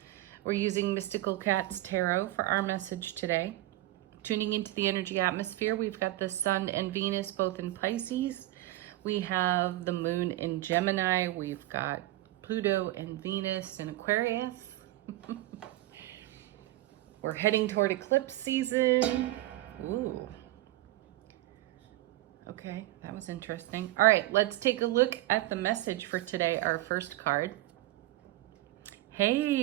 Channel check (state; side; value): quieter; left; 16.8 dB